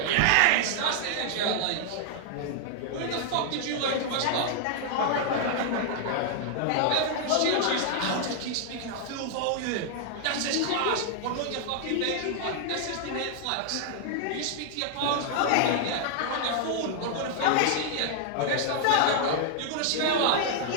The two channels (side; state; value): both; different; correlation 0.00